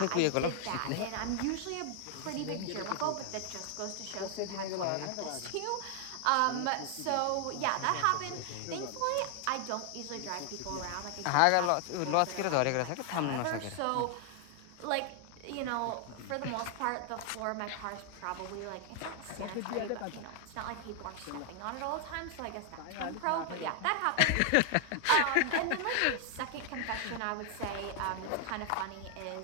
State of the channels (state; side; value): different; both; correlation 0.00